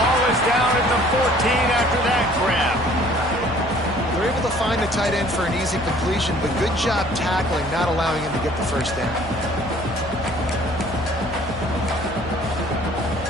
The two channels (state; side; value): noise; left; hum, 14 dB below the sound